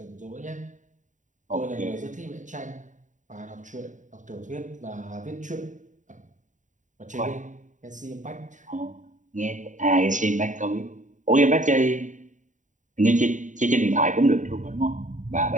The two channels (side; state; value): left; late; 0.36 ms